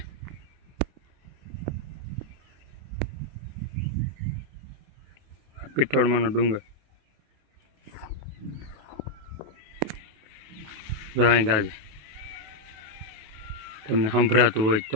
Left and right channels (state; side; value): late; left; 28 ms